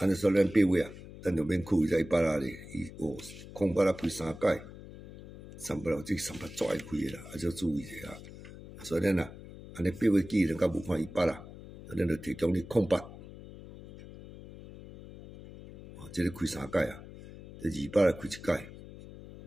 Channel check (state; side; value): noise; left; hum, 15 dB below the sound